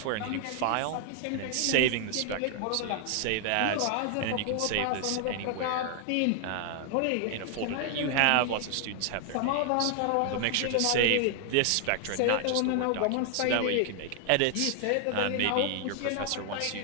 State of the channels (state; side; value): different; both; correlation 0.00